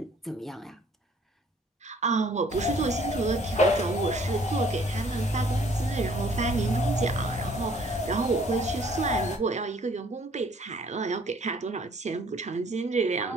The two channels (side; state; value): both; normal; correlation 0.59